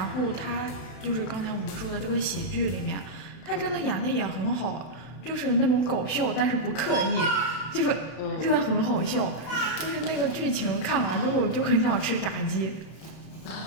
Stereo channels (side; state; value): right; late; 32 ms